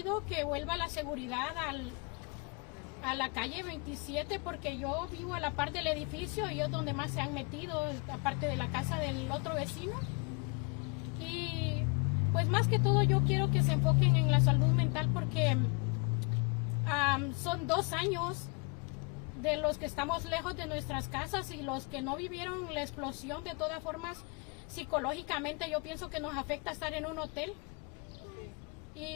que vuelva la seguridad a la calle 27, porque yo vivo a la par del edificio y es donde más se han metido, aparte de la casa del otro vecino. Y pues más que todo yo quiero que se enfoquen en la salud mental, porque son 2 años de los que estamos lejos de nuestras casas, y los que no vivieron la explosión, de todas formas, psicológicamente yo pienso que nos afecta estar en un hotel.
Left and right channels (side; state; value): right; quieter; 32.5 dB